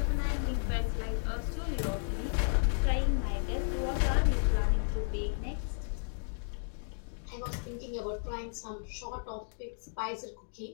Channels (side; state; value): right; silent; digital silence